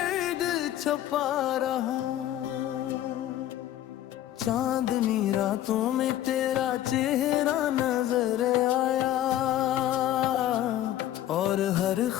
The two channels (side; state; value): right; quieter; 12.7 dB